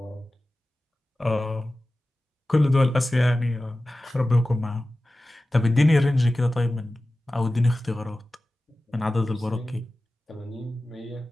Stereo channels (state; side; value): normal; both; correlation 0.95